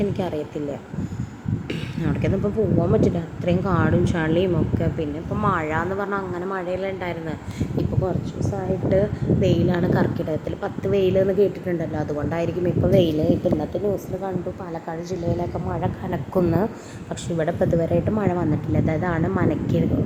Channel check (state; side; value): identical; both; correlation 1.00